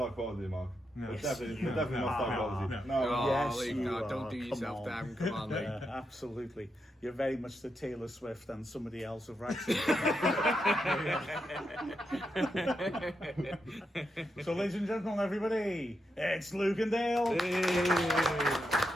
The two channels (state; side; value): normal; both; correlation 0.84